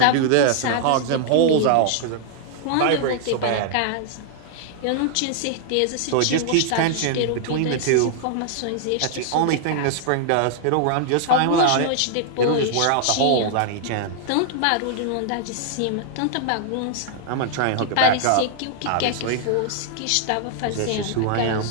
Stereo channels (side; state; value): both; different; correlation 0.00